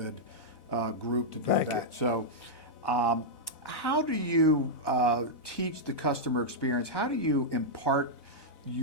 group to do that. So how do you teach the customer experience? How do you impart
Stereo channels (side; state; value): right; late; 4.0 ms